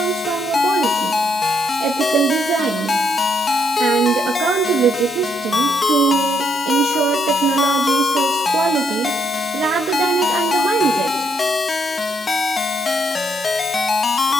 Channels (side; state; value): both; normal; correlation 0.74